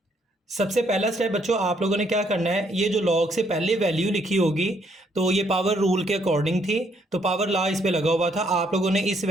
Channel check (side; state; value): both; normal; correlation 0.70